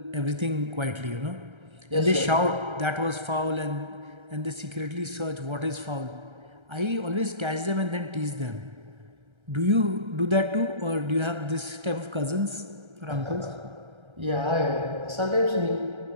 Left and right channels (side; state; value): left; late; 1.3 ms